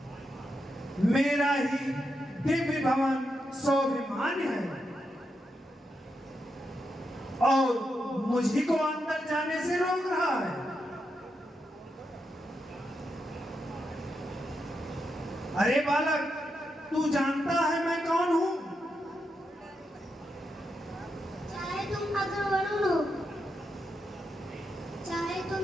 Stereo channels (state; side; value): normal; both; correlation 0.84